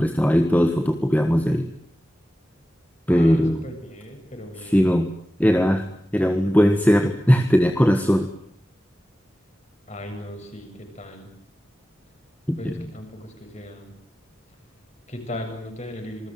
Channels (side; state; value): both; normal; correlation 0.95